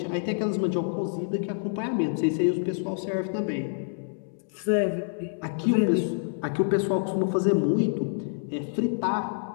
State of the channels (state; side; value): silent; right; 60 dB below the other